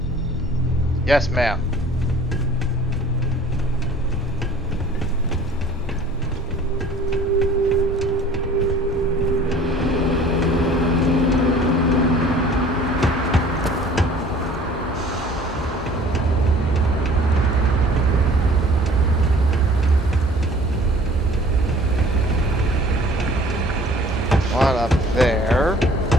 Yes, ma'am. One up there.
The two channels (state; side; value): normal; both; correlation 0.50